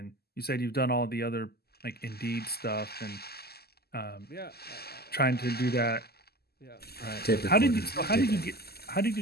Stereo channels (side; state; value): right; late; 0.46 ms